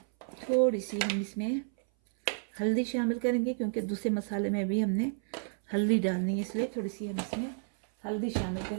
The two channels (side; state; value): left; silent; 57 dB below the other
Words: थोड़ी सी हम इसमें हल्दी शामिल करेंगे, क्योंकि दूसरे मसाले में भी हमने हल्दी डालनी है, इसलिए थोड़ी सी हम इसमें हल्दी शामिल